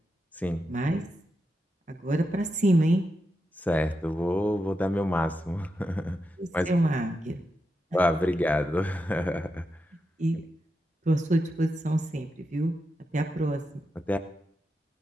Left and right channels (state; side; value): normal; both; correlation 0.87